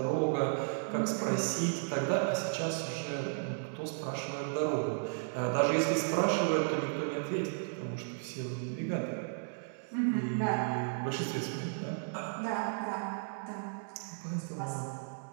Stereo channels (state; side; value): silent; left; digital silence